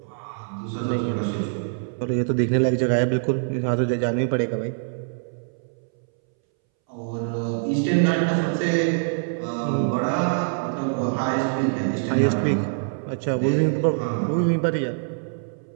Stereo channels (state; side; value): silent; left; 62 dB below the other